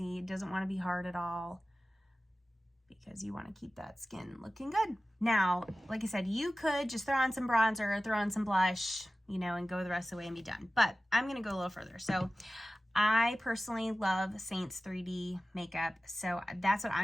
It doesn't want to be hard at all, because you want to keep that skin looking good. Now, like I said, you could just throw on some bronzer, throw on some blush, you know, and go the rest of the way and be done. But I'm going to go a little further. So I personally love Saints 3D makeup. So that's what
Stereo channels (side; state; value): both; normal; correlation 0.96